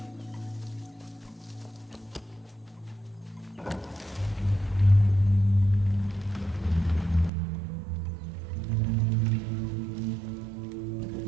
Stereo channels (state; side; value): drops out; left; at 7.3 s